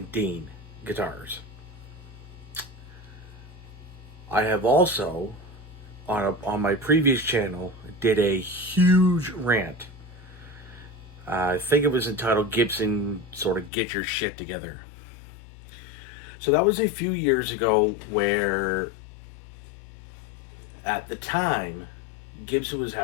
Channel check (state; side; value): drops out; right; at 13.7 s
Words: Dean guitars. I have also, on my previous channel, did a huge rant. I think it was entitled Gibson sort of Get Your Shit Together. So that was a few years ago where, at the time, Gibson was